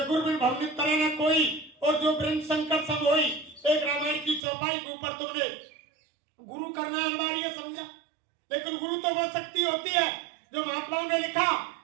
गुरु बिन भवनित तरह न कोई और जो ब्रह्म शंकर सब होई, एक रामायण की चौपाई के ऊपर तुमने गुरु करना अनिवार्य समझा। लेकिन गुरु तो वो शक्ति होती है जो महात्माओं ने लिखा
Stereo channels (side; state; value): left; drops out; at 4.4 s